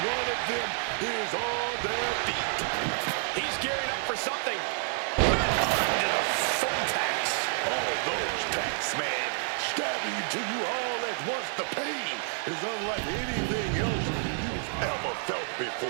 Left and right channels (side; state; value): left; silent; 58 dB below the other